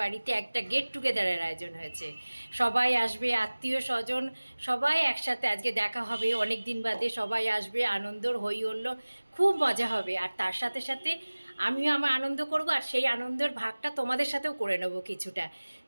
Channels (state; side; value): inverted; both; correlation -1.00